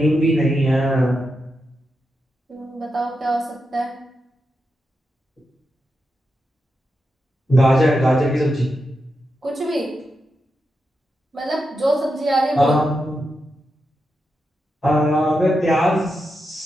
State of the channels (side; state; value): both; normal; correlation 0.87